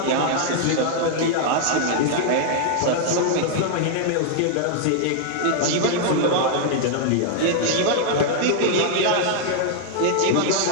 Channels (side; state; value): both; different; correlation 0.00